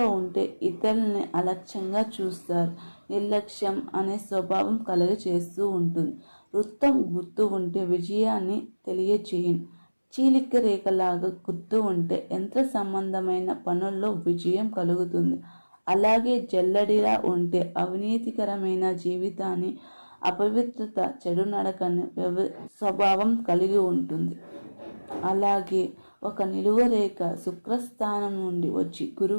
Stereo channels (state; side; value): inverted; both; correlation -1.00